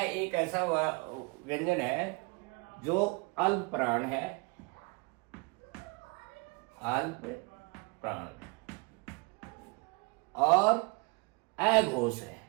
एक ऐसा व्यंजन है जो अल्प प्राण है, अल्प प्राण, और अघोष है।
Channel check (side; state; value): left; quieter; 28.9 dB